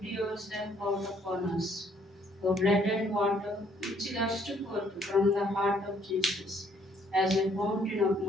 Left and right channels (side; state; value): both; normal; correlation 0.66